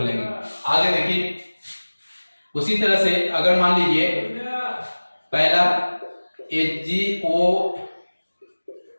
आगे देखिए उसी तरह से अगर मान लीजिए पहला HgO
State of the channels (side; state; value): both; inverted; correlation -1.00